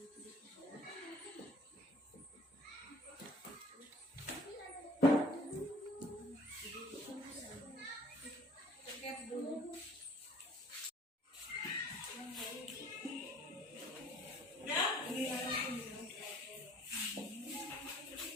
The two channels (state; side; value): normal; both; correlation 0.53